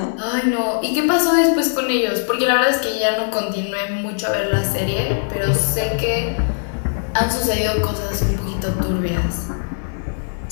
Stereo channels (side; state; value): right; silent; digital silence